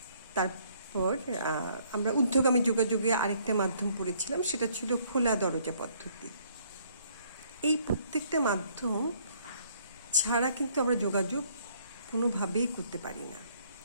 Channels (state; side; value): inverted; both; correlation -0.65